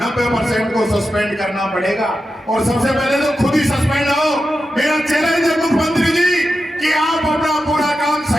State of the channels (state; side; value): normal; both; correlation 0.90